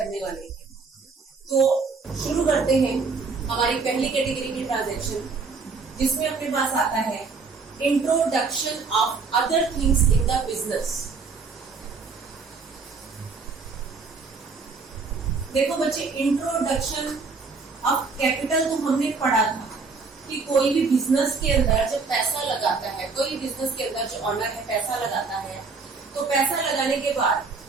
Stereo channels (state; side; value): quieter; left; 4.6 dB